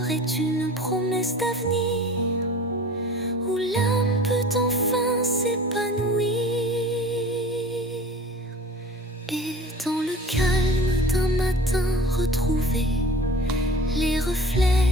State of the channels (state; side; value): normal; both; correlation 0.42